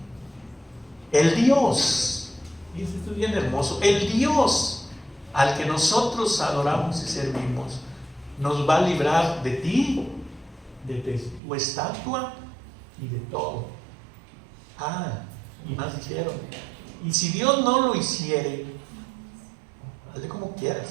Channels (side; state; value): left; drops out; at 11.4 s